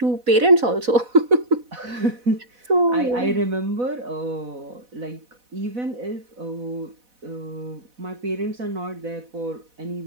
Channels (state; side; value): late; left; 4.1 ms